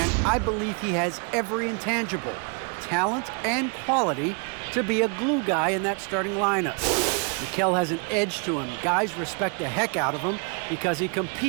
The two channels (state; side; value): quieter; left; 36.5 dB